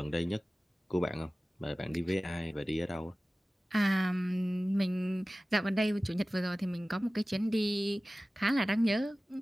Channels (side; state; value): both; normal; correlation 0.97